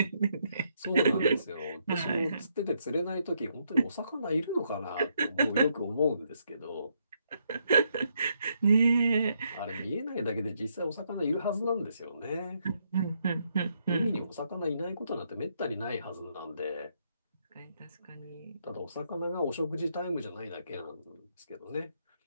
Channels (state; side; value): inverted; both; correlation -0.76